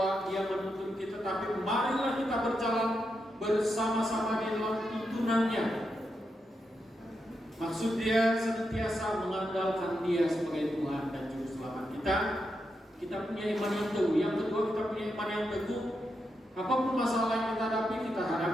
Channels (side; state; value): both; normal; correlation 0.85